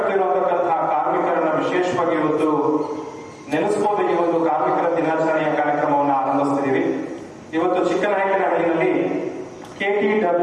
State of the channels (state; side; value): identical; both; correlation 1.00